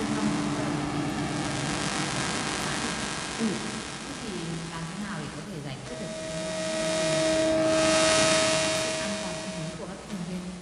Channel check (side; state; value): both; identical; correlation 1.00